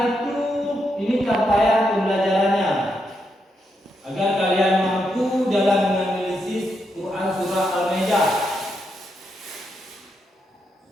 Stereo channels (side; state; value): both; normal; correlation 0.82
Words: itu, ini capaian pembelajarannya, agar kalian mampu dalam menganalisis Quran surah Al-Maidah.